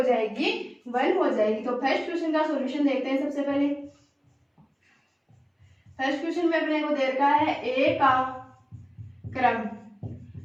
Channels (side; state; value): both; identical; correlation 1.00